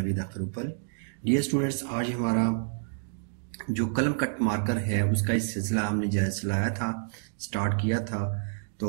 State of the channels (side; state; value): left; silent; digital silence